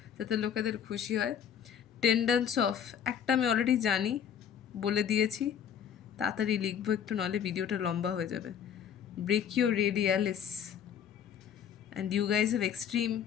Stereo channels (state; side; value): quieter; right; 8.5 dB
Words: যাতে লোকেদের খুশি হয়। টেন্ডেন্স অফ, একটা আমি অলরেডি জানি, বলে দিয়েছি, তাড়াতাড়ি লিখবো একটু, নাহলে ভিডিওটা লম্বা হয়ে যাবে। Brachioradialis, and you guys have extreme,